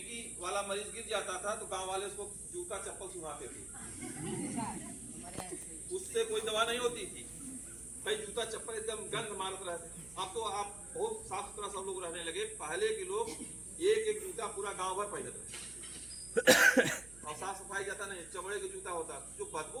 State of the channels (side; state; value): right; noise; hum, 19 dB below the sound